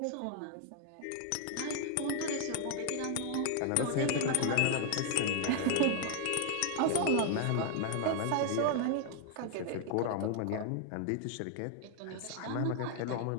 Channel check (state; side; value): different; both; correlation 0.00